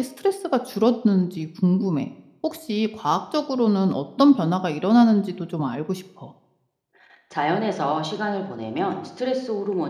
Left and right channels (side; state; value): both; identical; correlation 1.00